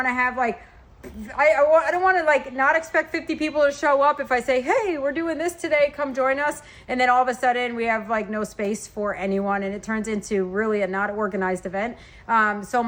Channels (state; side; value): identical; both; correlation 1.00